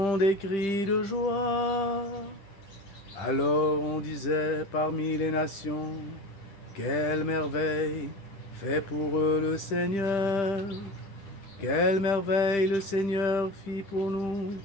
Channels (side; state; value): right; late; 10 ms